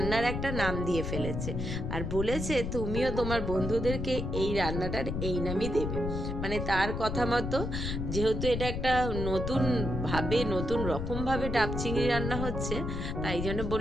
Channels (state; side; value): noise; left; rumble, 3 dB below the sound